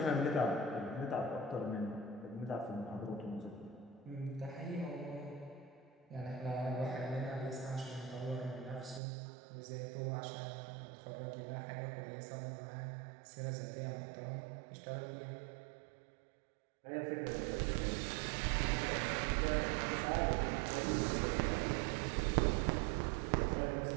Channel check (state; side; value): drops out; left; at 9.0 s